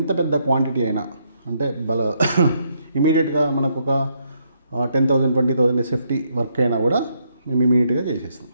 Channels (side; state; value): both; inverted; correlation -0.75